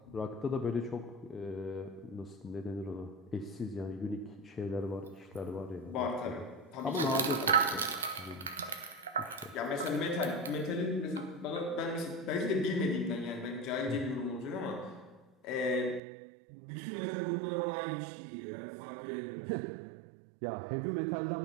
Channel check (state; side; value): drops out; left; at 16.0 s